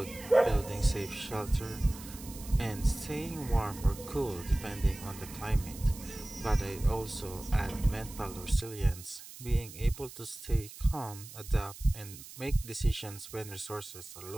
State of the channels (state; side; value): noise; right; hiss, 15 dB below the sound